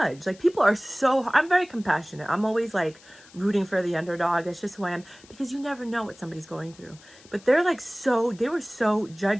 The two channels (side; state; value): left; noise; hiss, 24 dB below the sound